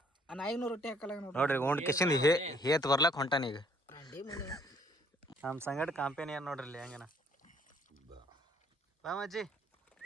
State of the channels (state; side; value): normal; both; correlation 0.62